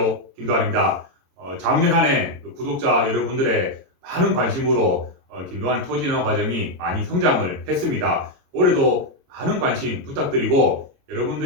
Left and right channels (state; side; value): late; left; 22 ms